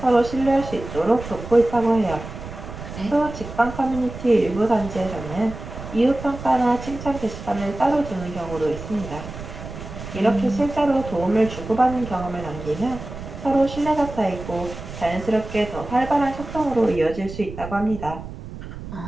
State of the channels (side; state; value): right; noise; rumble, 11 dB below the sound